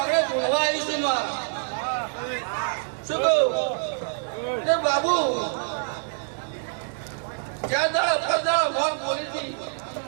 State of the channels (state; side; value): silent; left; digital silence